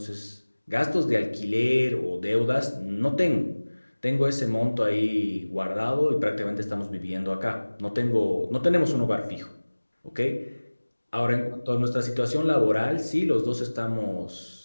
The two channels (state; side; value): inverted; both; correlation -1.00